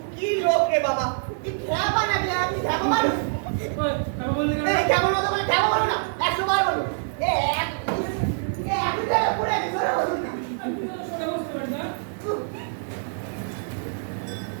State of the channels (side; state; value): left; silent; digital silence